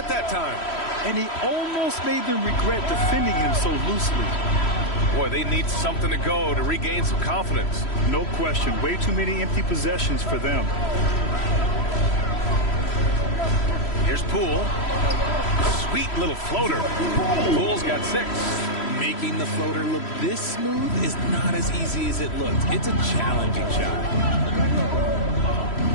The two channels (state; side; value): late; right; 3.1 ms